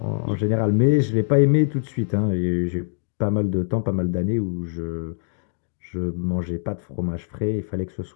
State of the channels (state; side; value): silent; right; digital silence